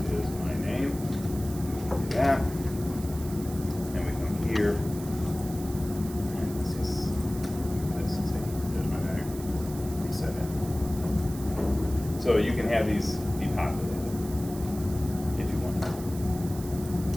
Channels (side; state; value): right; noise; hiss, 15 dB below the sound